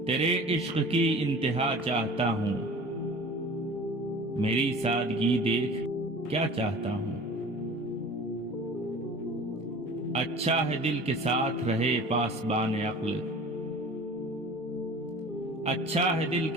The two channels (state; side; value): normal; both; correlation 0.41